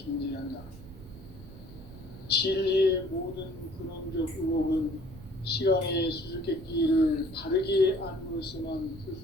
진리의 모든 근원적 의혹은 시간의 수수께끼를 바르게 안으로서만 풀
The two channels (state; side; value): noise; right; rumble, 16 dB below the sound